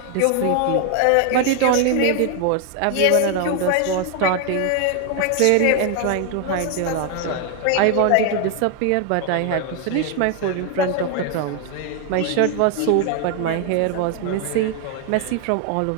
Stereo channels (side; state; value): both; different; correlation 0.01